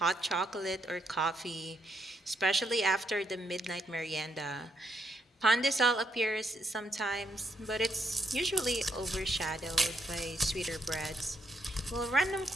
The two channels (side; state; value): both; normal; correlation 0.77